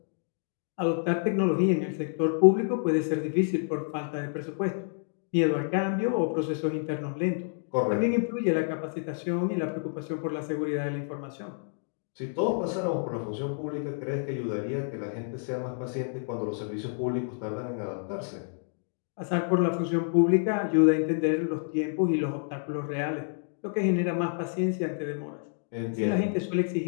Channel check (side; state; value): right; silent; digital silence